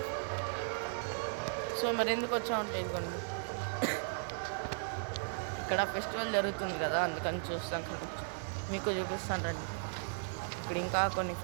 సో మరి ఎందుకు వచ్చామంటే ఇదిగోండి ఇక్కడ ఫెస్టివల్ జరుగుతుంది కదా, అందుకని చూస్తాం కదా, మీకు చూపిస్తాను రండి. ఇక్కడ ఇంకా కొన్ని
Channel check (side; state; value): left; silent; digital silence